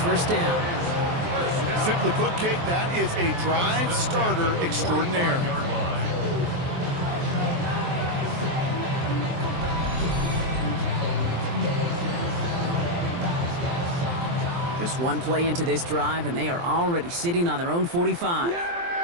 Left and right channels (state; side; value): late; left; 23 ms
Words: down. Simply put, Kate, that is a drive starter extraordinaire. Just one play into this drive, and they are already sitting on their own 45.